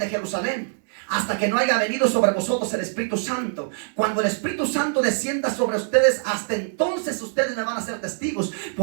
Jerusalén hasta que no haya venido sobre vosotros el Espíritu Santo. Cuando el Espíritu Santo descienda sobre ustedes, hasta entonces ustedes me van a ser testigos.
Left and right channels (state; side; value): silent; left; 63 dB below the other